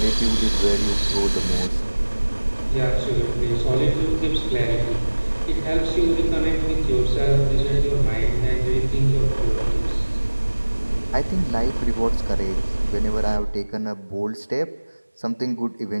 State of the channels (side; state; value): both; inverted; correlation -1.00